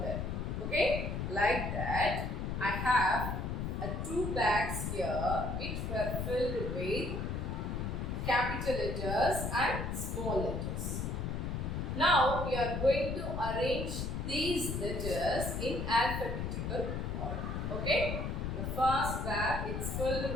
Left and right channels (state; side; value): noise; left; rumble, 2 dB below the sound